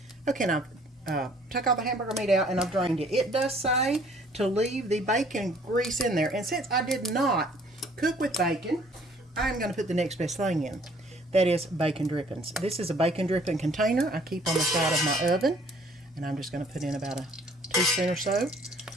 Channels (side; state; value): both; normal; correlation 0.58